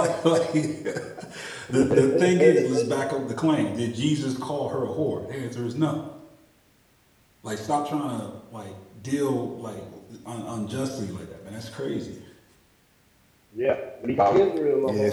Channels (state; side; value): identical; both; correlation 1.00